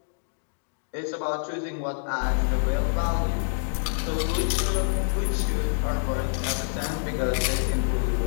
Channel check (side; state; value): right; silent; digital silence